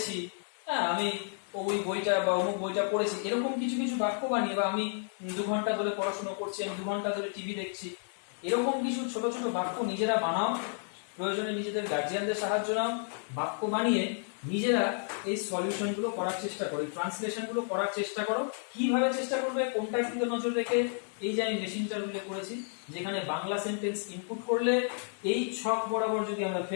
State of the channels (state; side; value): silent; right; 57 dB below the other